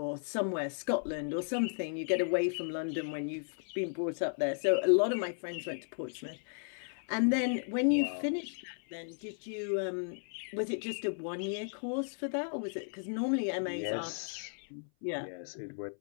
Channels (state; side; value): silent; right; 55 dB below the other